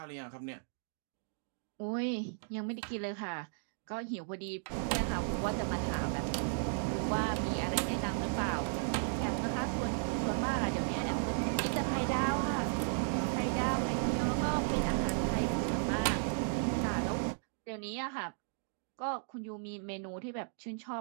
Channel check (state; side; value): silent; left; digital silence